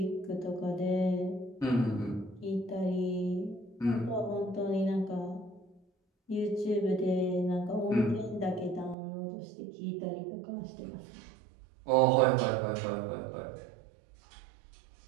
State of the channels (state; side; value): drops out; left; at 9.0 s